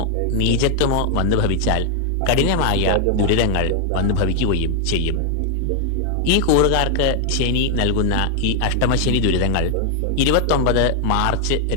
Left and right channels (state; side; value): different; both; correlation 0.00